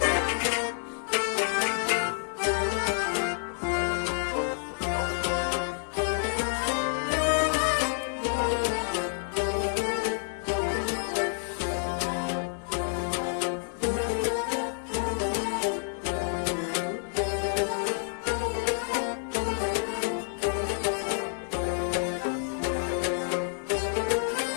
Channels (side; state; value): right; silent; digital silence